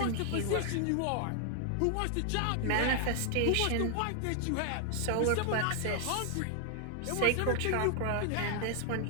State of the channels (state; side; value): different; both; correlation 0.00